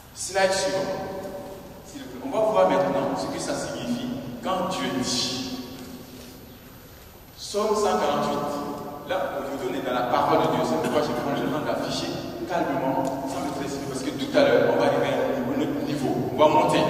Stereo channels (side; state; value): both; identical; correlation 1.00